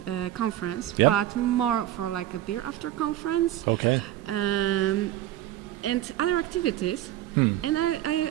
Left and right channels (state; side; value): quieter; left; 13.5 dB